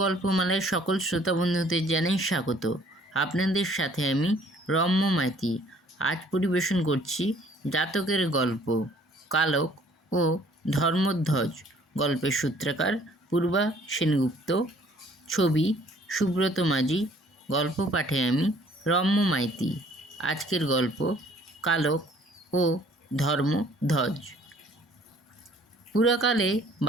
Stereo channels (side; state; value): both; normal; correlation 0.58